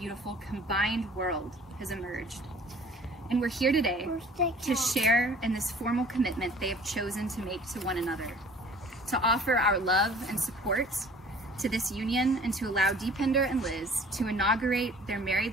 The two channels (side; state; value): both; normal; correlation 0.50